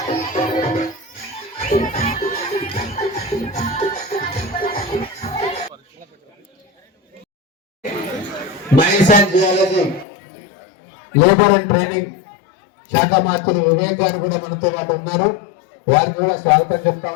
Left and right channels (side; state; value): right; drops out; at 10.1 s